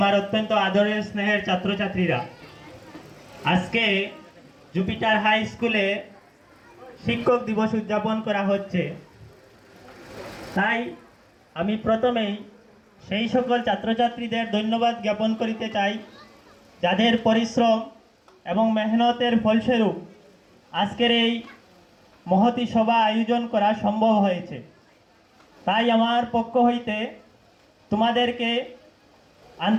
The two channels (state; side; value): identical; both; correlation 1.00